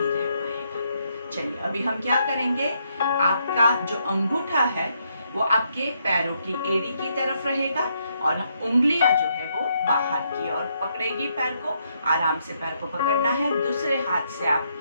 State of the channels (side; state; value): both; inverted; correlation -0.76